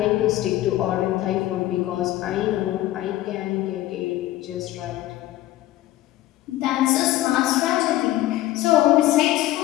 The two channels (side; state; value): right; quieter; 15.3 dB